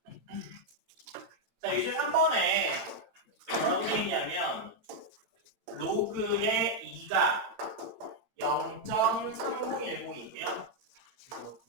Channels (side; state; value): left; late; 8.9 ms